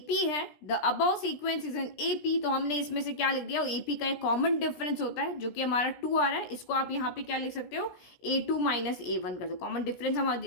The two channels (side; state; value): right; late; 17 ms